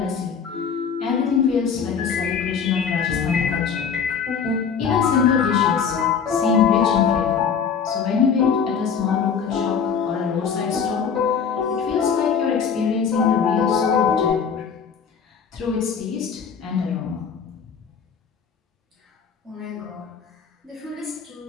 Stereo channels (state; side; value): quieter; right; 6.7 dB